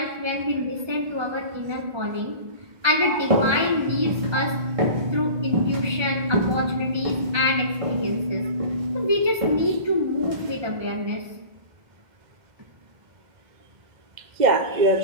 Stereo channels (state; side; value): late; left; 1.3 ms